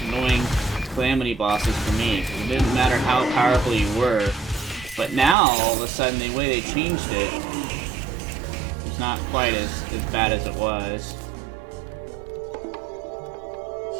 annoying Calamity bosses for me. It didn't matter how powerful you were, but now all of a sudden the way they changed it, it's not quite as bad as it was.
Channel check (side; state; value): left; drops out; at 5.4 s